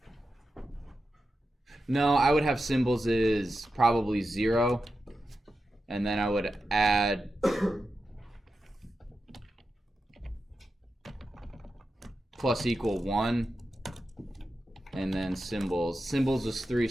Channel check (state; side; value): normal; both; correlation 0.90